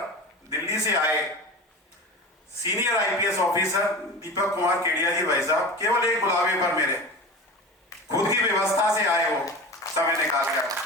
दिल्ली से आए senior IPS officer Deepak Kumar Kedia जी भाई साहब, केवल एक बुलावे पर मेरे खुद की व्यवस्था से आए हो, समय निकाल कर।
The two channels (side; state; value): both; normal; correlation 0.31